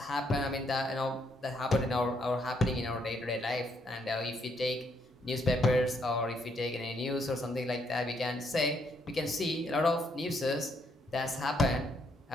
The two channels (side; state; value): both; normal; correlation 0.73